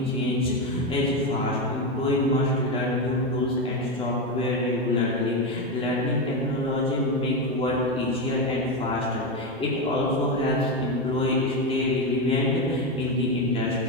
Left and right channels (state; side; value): normal; both; correlation 0.12